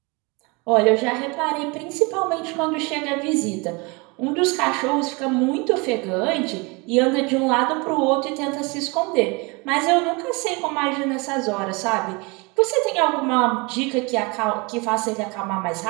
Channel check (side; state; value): left; quieter; 27.9 dB